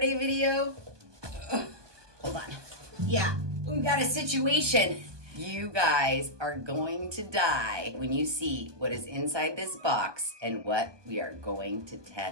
video, hold on. Yeah, we got a situation. You guys are going to die when you see what is inside this box and what we are going to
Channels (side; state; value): left; late; 1.2 ms